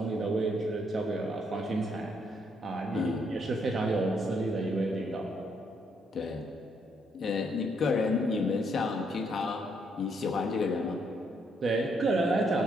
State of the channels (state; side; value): normal; both; correlation 0.73